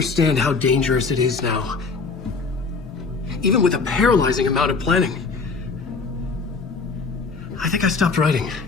how dangerous it is now. Even with a paralyzing amount of planning. I think I stopped writing.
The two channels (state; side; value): quieter; right; 4.5 dB